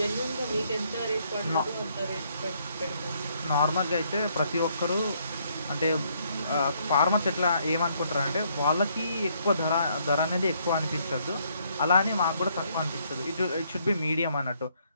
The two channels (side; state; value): both; inverted; correlation -0.70